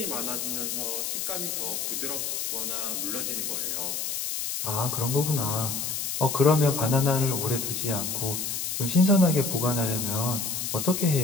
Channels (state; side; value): noise; left; hiss, 2 dB below the sound